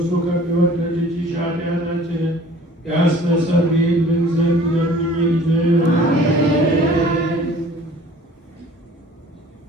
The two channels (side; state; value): both; normal; correlation 0.49